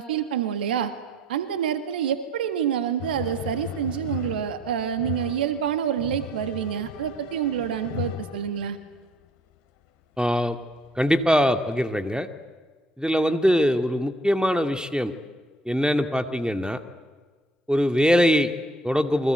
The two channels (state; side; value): normal; both; correlation 0.57